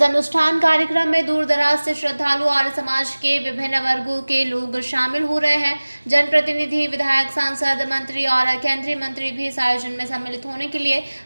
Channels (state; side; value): inverted; both; correlation -1.00